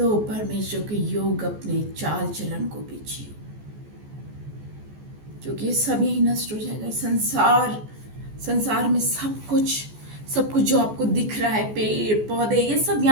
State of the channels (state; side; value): late; left; 14 ms